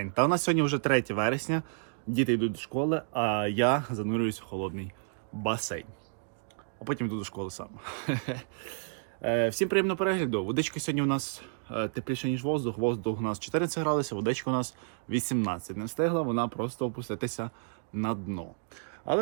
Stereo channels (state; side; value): silent; left; digital silence